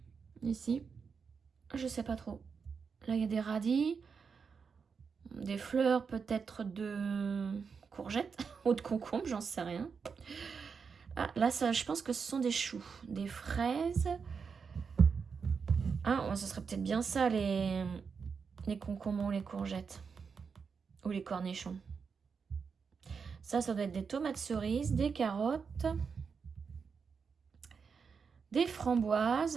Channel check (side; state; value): left; quieter; 5.7 dB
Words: Ici. Je sais pas trop. Là, il y a des radis. Des fleurs, peut-être de courgettes ou de concombres, j'en sais rien. Ah, là, ça, je pense que ce sont des choux. Des fraises. Ah, oh, ça serait peut-être bien ça, les concombres ou les courgettes. Ou les cornichons. Ça doit être des tomates cerises, des carottes, des